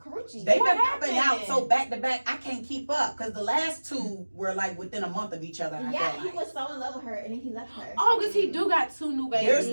They've What been popping out happened? so back to back, I can't keep up because the last two were like within a month of each other. I Yeah, feel he like. was so in love with her, and then he left her. Oh, because he do got 2 new babies.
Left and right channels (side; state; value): both; inverted; correlation -1.00